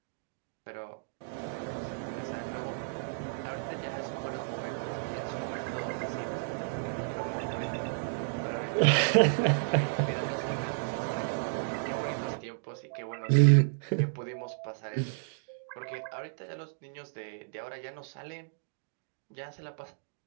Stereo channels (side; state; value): left; silent; digital silence